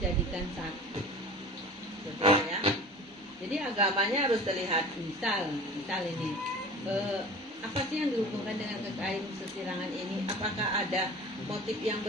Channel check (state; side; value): normal; both; correlation 0.39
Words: satu. Betul ya. Jadi agamanya harus terlihat. Misal ini, apa sih yang dihubungkan dengan kekayaan sesirangan ini? Apakah ada motif yang